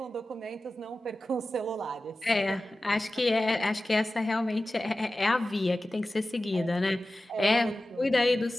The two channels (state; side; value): normal; both; correlation 0.95